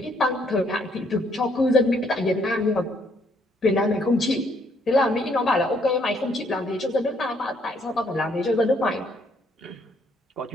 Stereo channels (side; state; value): both; normal; correlation 0.69